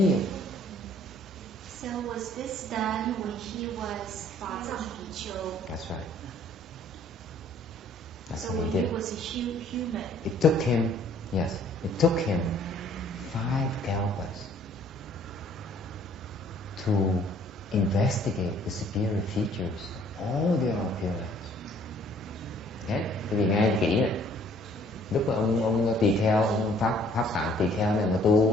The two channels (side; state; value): both; normal; correlation 0.59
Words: of them. So was this done when he was Fazang Pichu? That's right. That's So what when he did. he was a human. It took him 5 kalpas to investigate the superior features of all the other Pure Lands. Okay? Vì nghe kỹ này, lúc mà ông tỳ kheo, ông pháp tạng tỳ kheo này mà